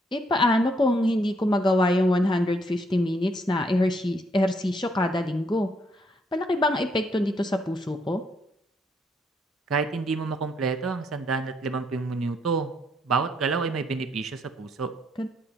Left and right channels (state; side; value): normal; both; correlation 0.72